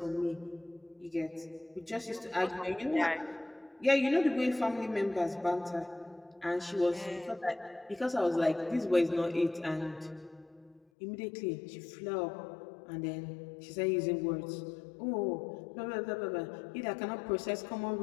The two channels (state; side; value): drops out; right; at 10.8 s